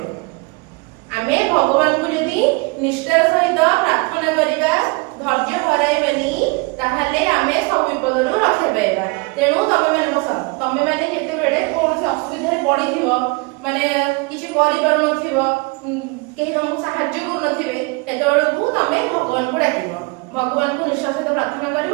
ଆମେ ଭଗବାନଙ୍କୁ ଯଦି ନିଷ୍ଠାର ସହିତ ପ୍ରାର୍ଥନା କରିବା, ଧୈର୍ଯ୍ୟ ହରାଇବାନି, ତାହେଲେ ଆମେ ସବୁ ବିପଦରୁ ରକ୍ଷା ପାଇବା। ତେଣୁ ତମେମାନେ ବସ, ତମେମାନେ ଯେତେବେଳେ କୌଣସି ଅସୁବିଧାରେ ପଡ଼ିଥିବ, ମାନେ କିଛି କରିପାରୁନଥିବ, କେହି ତମକୁ ସାହାଯ୍ୟ କରୁନଥିବେ, ସେତେବେଳକୁ ତମେ ଭଗବାନଙ୍କୁ ଡାକିବ। ଭଗବାନଙ୍କୁ ନିଷ୍ଠାର ସହିତ ପ୍ରାର୍ଥନା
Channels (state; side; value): quieter; left; 28.1 dB